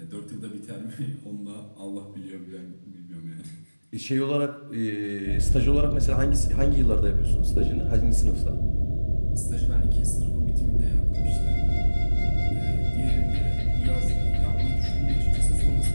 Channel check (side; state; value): both; inverted; correlation -1.00